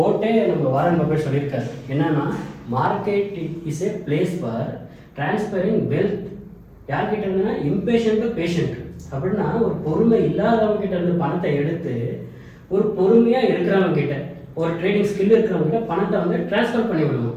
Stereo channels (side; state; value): both; identical; correlation 1.00